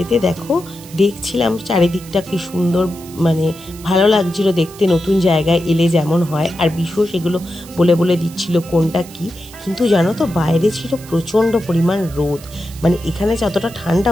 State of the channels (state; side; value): noise; right; hiss, 19 dB below the sound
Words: দেখো দেখছিলাম চারিদিকটা কি সুন্দর, মানে ভালো লাগছিল দেখতে, নতুন জায়গায় এলে যেমন হয়। আর বিশেষ সেগুলো বলে বলে দিচ্ছিল কোনটা কি। কিন্তু জানো তো, বাইরে ছিল প্রচণ্ড পরিমাণ রোদ। মানে এখানে যতটা ঠান্ডা,